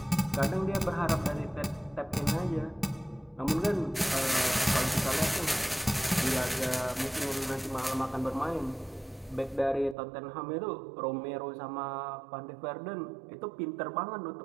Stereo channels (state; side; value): drops out; left; at 10.0 s